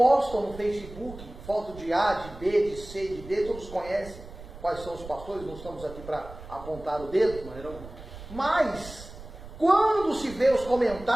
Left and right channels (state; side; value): noise; right; rumble, 15 dB below the sound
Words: no Facebook foto de A, de B, de C, de D, todos conhecem quais são os pastores, não estamos aqui para apontar o dedo, mas quando se vê os